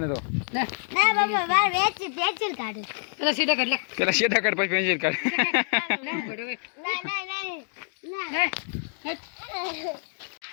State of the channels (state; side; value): silent; right; digital silence